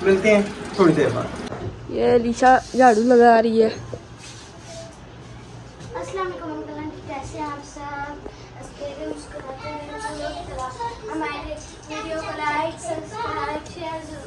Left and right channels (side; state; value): both; identical; correlation 1.00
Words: मिलते हैं थोड़ी देर बाद। ये लीशा झाड़ू लगा रही है। अस्सलाम वालेकुम अंकल, कैसे हैं आप सब? हमारे वीडियो को लाइक सब्सक्राइब शेयर